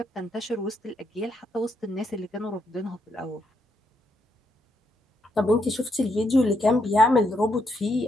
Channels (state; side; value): normal; both; correlation 0.77